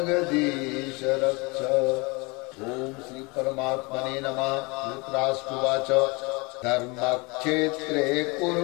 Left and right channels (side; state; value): right; quieter; 27.5 dB